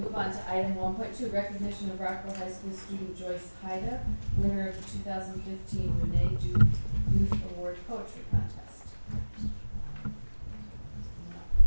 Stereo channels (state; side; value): inverted; both; correlation -1.00